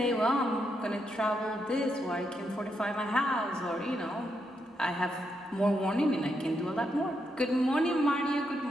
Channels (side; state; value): both; normal; correlation 0.81